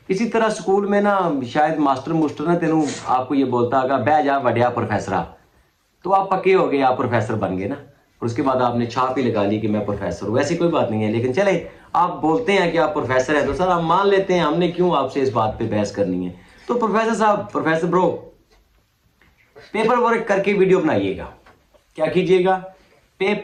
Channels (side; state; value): both; identical; correlation 1.00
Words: اسی طرح سکول میں نا شاید ماسٹر نا تینوں آپ کو یہ بولتا ہوگا بہ جا وڈیا پروفیسرا، تو آپ پکے ہو گئے، آپ پروفیسر بن گئے نا، اور اس کے بعد آپ نے چھاپ ہی لگا لی کہ میں پروفیسر ہوں۔ ویسی کوئی بات نہیں ہے، لیکن چلے آپ بولتے ہیں کہ آپ پروفیسر ہیں تو سر ہم مان لیتے ہیں، ہم نے کیوں آپ سے اس بات پہ بحث کرنی ہے۔ تو پروفیسر صاحب، پروفیسر برو، پیپر ورک کر کے ویڈیو بنائیے گا، کیا کیجیے گا؟